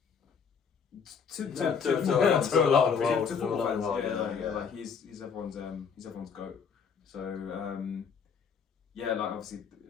To a lot of the world. To football fans, like he's everyone's goat. So like obviously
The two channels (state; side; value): quieter; right; 6.4 dB